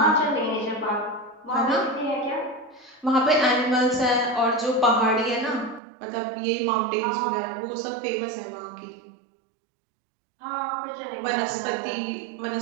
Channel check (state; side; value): drops out; left; at 5.8 s